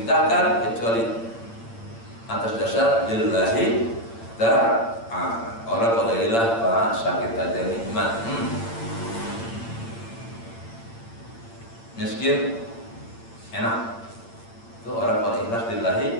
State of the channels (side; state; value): right; late; 8.8 ms